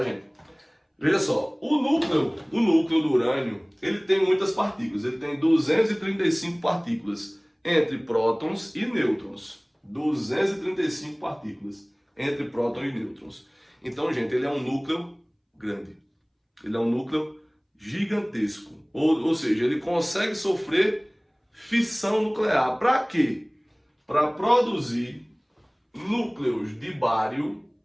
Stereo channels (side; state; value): both; identical; correlation 1.00